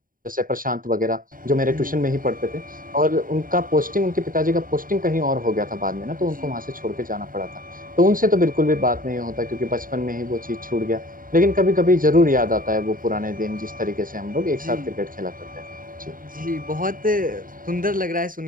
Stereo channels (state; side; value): late; left; 0.40 ms